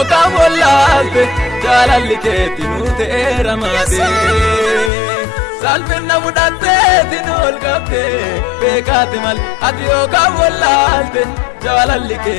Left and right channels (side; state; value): right; drops out; at 4.9 s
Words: wallaatte jaalalli keeti nu teeramaade salphina fudhatteeti nu olkatte beekaati malee ati yookaan wallaatte jaalalli